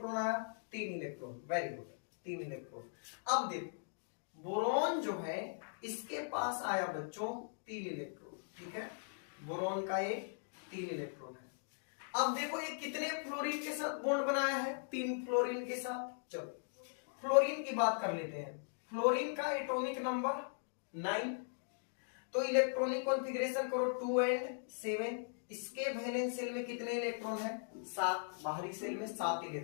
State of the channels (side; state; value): right; silent; digital silence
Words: आया? 3 इलेक्ट्रॉन। Very good, 3 electron. अब देखो बोरोन जो है इसके पास आया बच्चों 3 इलेक्ट्रॉन। ठीक है, बोरोन का ये 3 इलेक्ट्रॉन है। अब देखो ये कितने फ्लोरीन के साथ बॉन्ड बनाया है? 3 फ्लोरीन के साथ। चलो फ्लोरीन की बात कर लेते हैं। फ्लोरीन का एटॉमिक नंबर 9। तो इलेक्ट्रॉनिक कॉन्फ़िगरेशन करो 2 and 7। इसके वैलेंस शेल में कितने इलेक्ट्रॉन है? 7। बाहरी शेल में 7